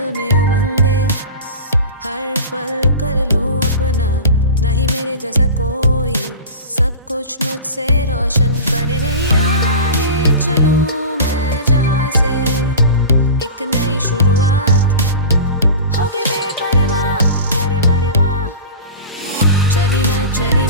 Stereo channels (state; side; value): inverted; both; correlation -0.33